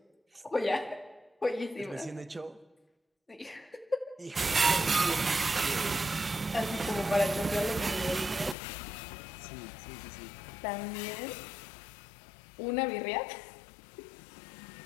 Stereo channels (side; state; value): right; drops out; at 8.6 s